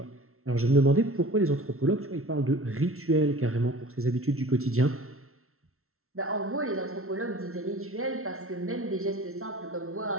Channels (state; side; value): late; left; 0.63 ms